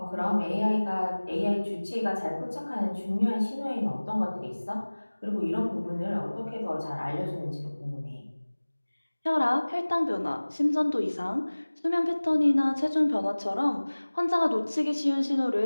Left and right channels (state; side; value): inverted; both; correlation -1.00